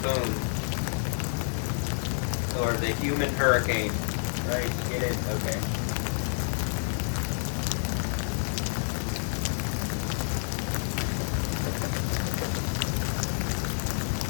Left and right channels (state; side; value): silent; right; digital silence